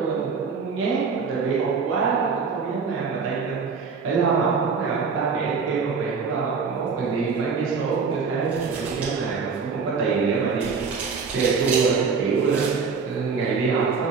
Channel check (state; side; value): quieter; left; 5.3 dB